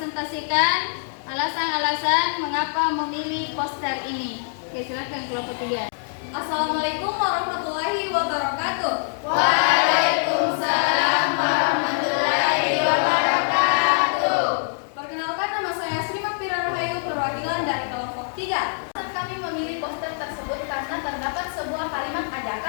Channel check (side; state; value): right; silent; digital silence